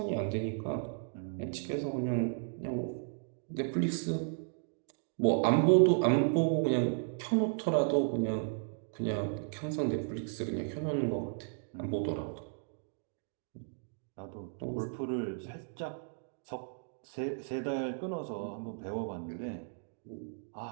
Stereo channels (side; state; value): left; silent; digital silence